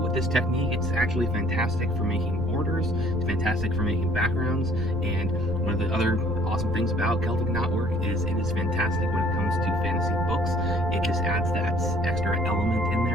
with this technique, it's actually fantastic for making borders, it's fantastic for making backgrounds, and one of the other awesome things about Celtic knotwork is it is fantastic when it comes to fantasy books. It just adds that extra element in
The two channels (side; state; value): right; noise; rumble, 5 dB below the sound